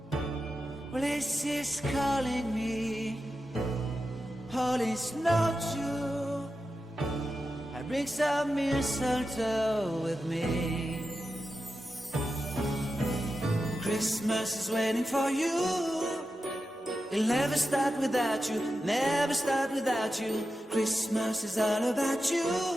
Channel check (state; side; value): normal; both; correlation 0.91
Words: Well, this is calling me, all is not true. I bring some mistletoe with me. Christmas is waiting for you. It'll never start without you, never start without you. Christmas is all about you.